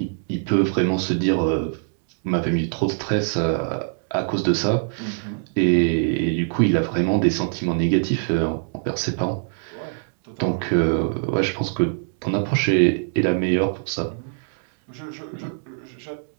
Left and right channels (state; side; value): silent; left; digital silence